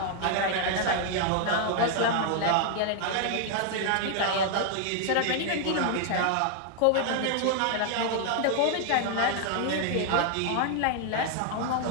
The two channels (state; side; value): different; both; correlation 0.00